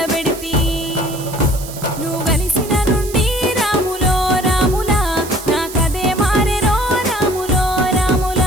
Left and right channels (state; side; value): noise; right; hiss, 13 dB below the sound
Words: పెడితి నువ్వు కలిసిన నుండి రాములో రాములా నాకదే మారెరో రాములో